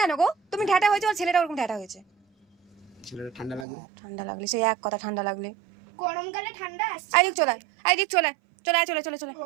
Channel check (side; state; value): left; drops out; at 3.7 s